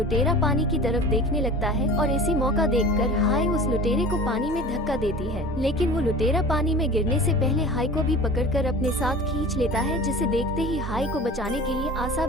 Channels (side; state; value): both; normal; correlation 0.39